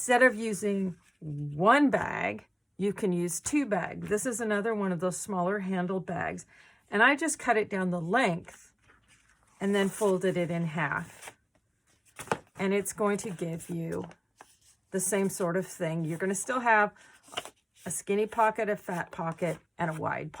of using 1 bag, you can use 2 bags. This is another one of those smaller handled bags. And I just cut it down the length and then folded it in half. And it's going to give you the same sort of thing. You're going to still have a skinny pocket, a fat pocket, and a wide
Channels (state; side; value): identical; both; correlation 1.00